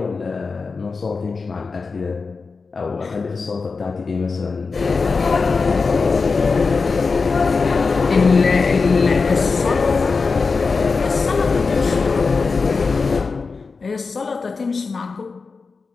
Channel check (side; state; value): right; quieter; 4.5 dB